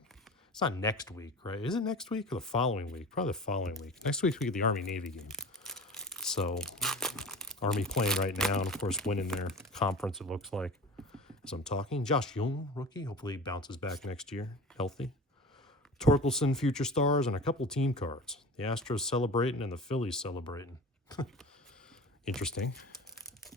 It's not next week, right? Is it next week or the following week? Probably the following week. Next week we get the Army-Navy game. So, Army playing right now, and of course winning their conference, it looks like, as I'm talking. Josh Jung, rookie. Hopefully he bounces back next year, healthy. Torkelson, future stars, and a couple team cards. The Astros celebrating and the Phillies celebrating. Interesting.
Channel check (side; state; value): both; normal; correlation 0.36